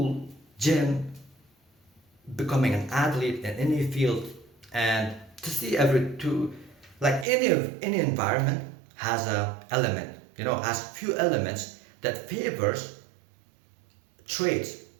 gym, becoming an athlete in any field. And to see every to like any environment has a element, has few elements that favors traits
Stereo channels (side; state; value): left; drops out; at 7.2 s